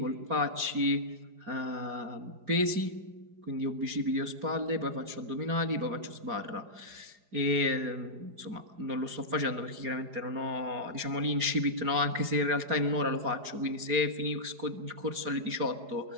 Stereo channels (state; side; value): late; left; 4.9 ms